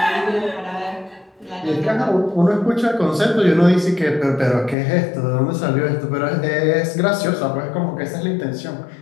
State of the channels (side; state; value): right; drops out; at 4.8 s